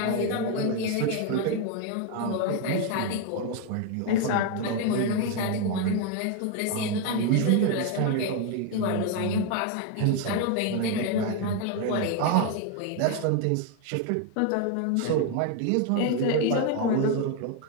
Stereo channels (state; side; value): different; both; correlation 0.01